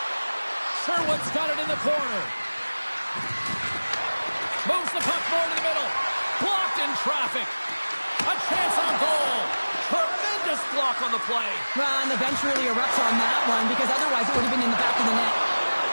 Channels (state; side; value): inverted; both; correlation -1.00